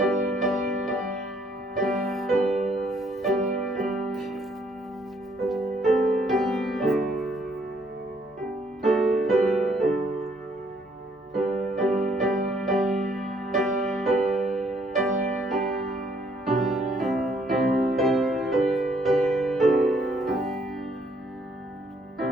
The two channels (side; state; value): both; normal; correlation 0.67